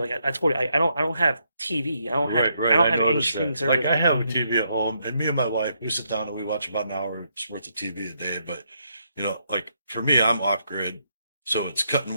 I told you, I don't have TV. I don't have Right. I don't I have any noticed streaming that. service. Like I have a TV at home, and me and my wife, we sit down and we watch about an hour's worth of TV a day. But like for me, I'm off grid, so it's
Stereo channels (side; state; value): both; inverted; correlation -0.76